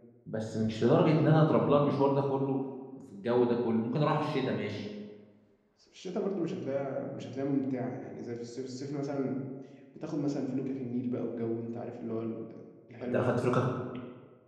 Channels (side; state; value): both; identical; correlation 1.00